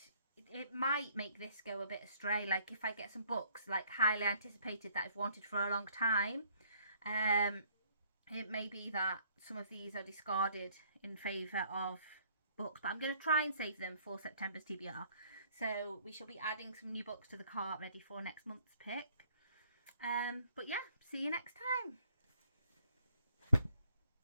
it might make this go a bit astray. Like if I get some books like highly anticipated that I've wanted for a long time, it may be that some of these are discarded in favour of books, but I'm going to try and save them for September's TBR. So we shall be adding some new books to the cart ready for next month's pick. But yeah, see you next time.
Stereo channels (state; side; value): inverted; both; correlation -0.62